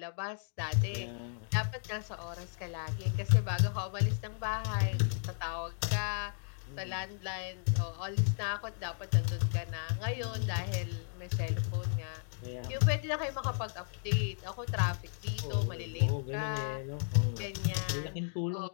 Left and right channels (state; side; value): silent; right; digital silence